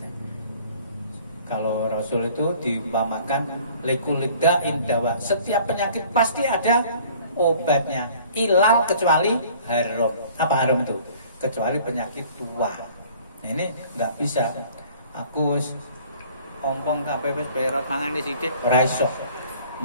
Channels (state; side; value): inverted; both; correlation -0.52